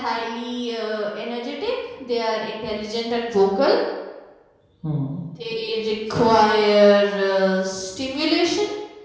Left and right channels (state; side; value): identical; both; correlation 1.00